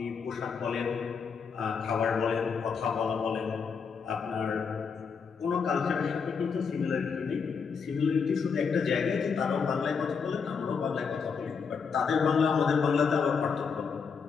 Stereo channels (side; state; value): right; quieter; 5.9 dB